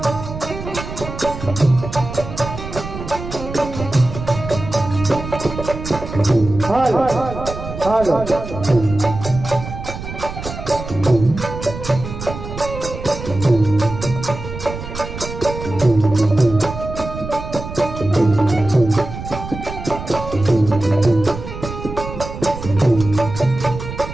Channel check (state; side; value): noise; right; rumble, 9 dB below the sound